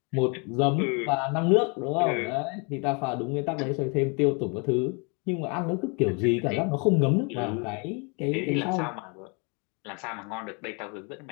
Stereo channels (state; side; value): quieter; right; 33.8 dB